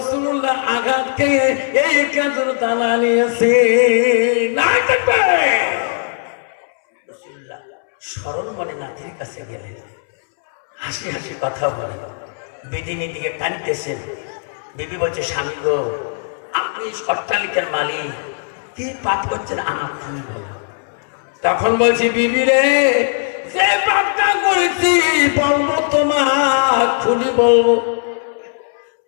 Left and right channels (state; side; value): silent; right; 67 dB below the other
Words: আঘাত খেয়ে এই খেজুর দানা নিয়েছে। নাই দেখবে রাসূলুল্লাহ স্মরণ মনে নাতির কাছে গেলেন, হাসি হাসি কথা বলেন, বিদিনীর দিকে টানতেছেন। বিবি বলছে স্বামী গো আপনি অট্টালিকার মালিক, কি পাপ করছেন আমার খুলে বলো। তখন বলছি বিবি রে, যে পাপটা করেছি বলবো তোমার খুলি বলবো।